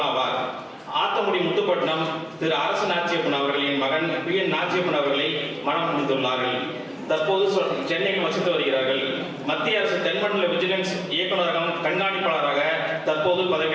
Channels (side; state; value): both; identical; correlation 1.00